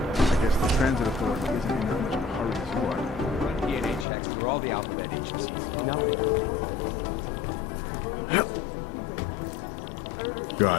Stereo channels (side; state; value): right; drops out; at 4.0 s